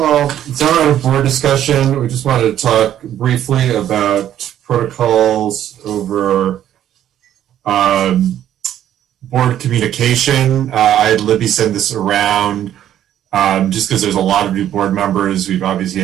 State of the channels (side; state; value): left; quieter; 11.3 dB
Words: It's not on a board discussion. We just wanted to talk briefly about protocols over board communication. I had Libby send this around just because there's a lot of new board members. We've obviously